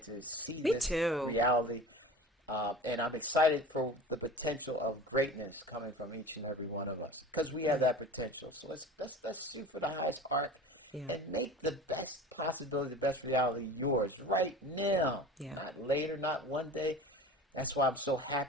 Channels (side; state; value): both; normal; correlation 0.37